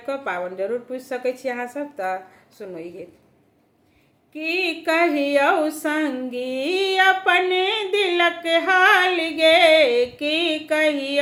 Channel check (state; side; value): identical; both; correlation 1.00